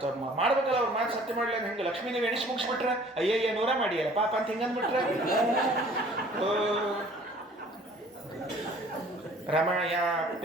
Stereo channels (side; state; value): both; normal; correlation 0.52